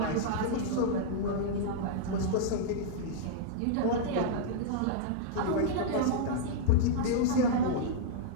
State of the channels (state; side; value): different; both; correlation -0.01